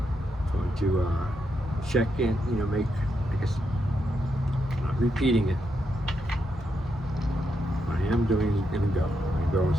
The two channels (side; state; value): both; normal; correlation 0.82